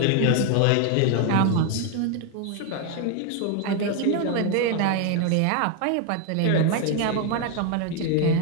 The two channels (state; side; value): different; both; correlation 0.01